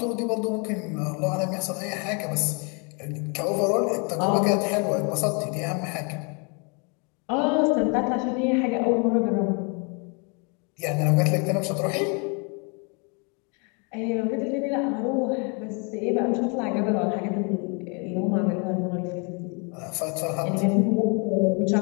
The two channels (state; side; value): quieter; right; 34.7 dB